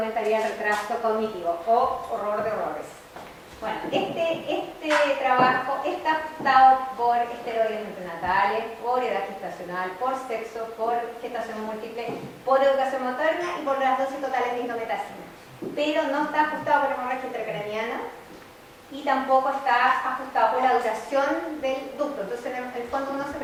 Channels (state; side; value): identical; both; correlation 1.00